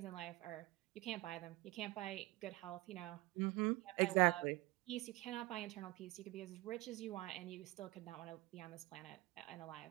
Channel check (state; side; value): quieter; left; 20.5 dB